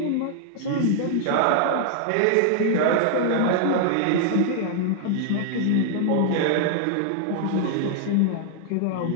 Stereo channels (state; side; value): different; both; correlation -0.01